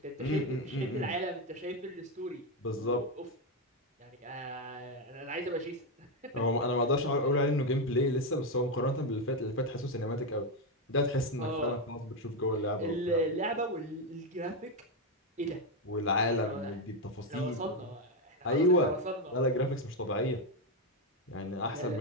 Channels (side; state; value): both; normal; correlation 0.07